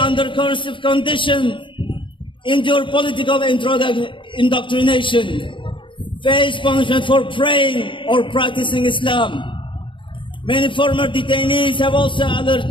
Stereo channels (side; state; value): right; late; 0.24 ms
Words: coercive conditions, endure political indoctrination, face punishment for praying or practicing Islam. Many former detainees have also alleged